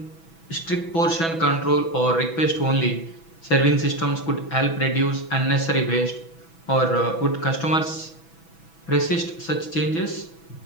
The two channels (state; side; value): late; right; 6.1 ms